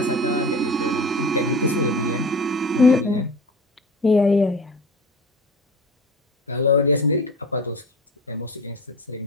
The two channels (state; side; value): normal; both; correlation 0.35